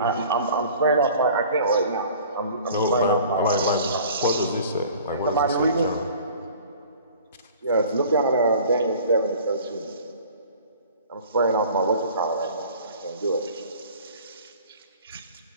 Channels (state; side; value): inverted; both; correlation -0.47